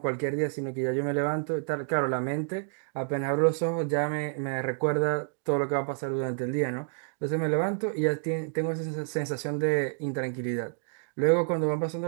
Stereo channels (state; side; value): silent; left; digital silence